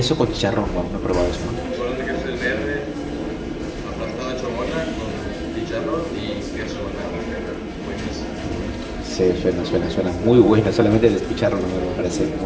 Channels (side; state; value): both; identical; correlation 1.00